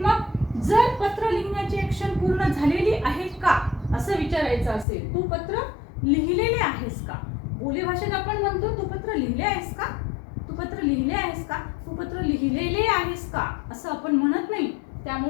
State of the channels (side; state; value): right; drops out; at 4.9 s